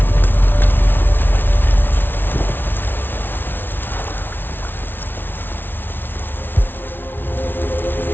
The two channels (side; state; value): right; late; 0.10 ms